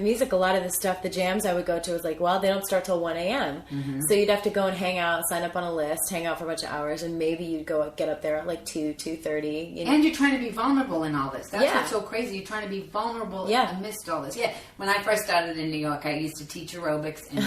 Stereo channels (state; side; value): identical; both; correlation 1.00